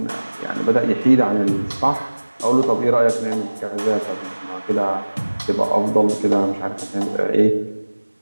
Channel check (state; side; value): inverted; both; correlation -1.00